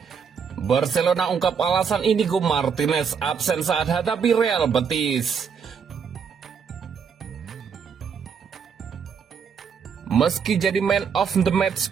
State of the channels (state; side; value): quieter; left; 6.6 dB